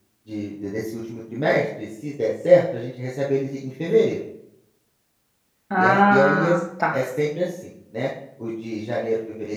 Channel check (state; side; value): identical; both; correlation 1.00